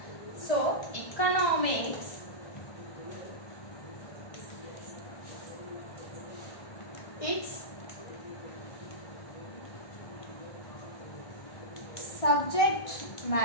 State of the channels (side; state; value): right; late; 1.7 ms